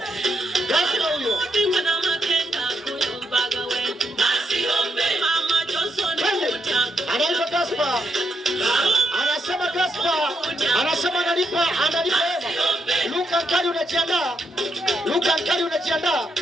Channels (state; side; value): normal; both; correlation 0.80